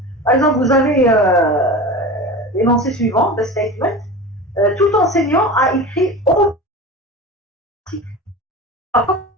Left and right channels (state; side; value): normal; both; correlation 0.31